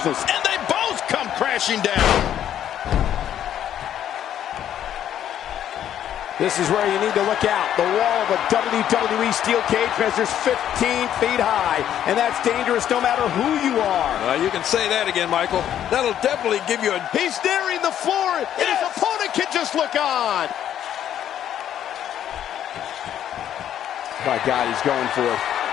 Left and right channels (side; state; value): right; quieter; 10.5 dB